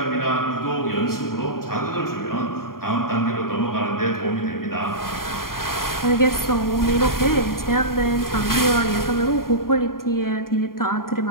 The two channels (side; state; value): right; late; 0.92 ms